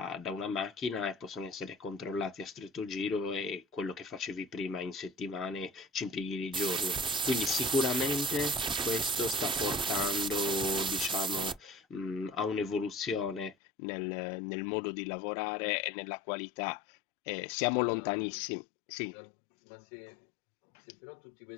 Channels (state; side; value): drops out; right; at 13.6 s